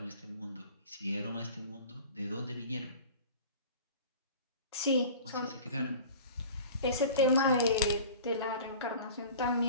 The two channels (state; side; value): inverted; both; correlation -0.41